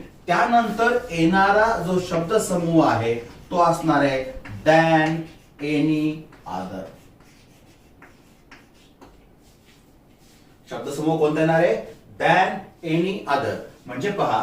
त्यानंतर येणारा जो शब्द समूह आहे तो असणार आहे दॅन एनी अदर. शब्दसमूह कोणता येणार आहे? Than any other. म्हणजे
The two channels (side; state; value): both; identical; correlation 1.00